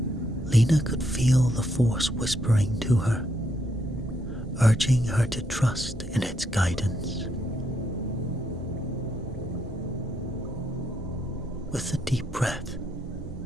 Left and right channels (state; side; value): normal; both; correlation 0.76